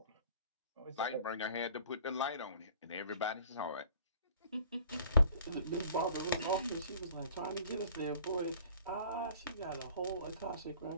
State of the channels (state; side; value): inverted; both; correlation -0.51